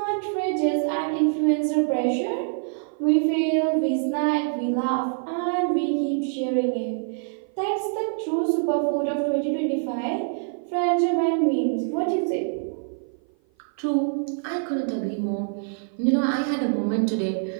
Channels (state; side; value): silent; left; 55 dB below the other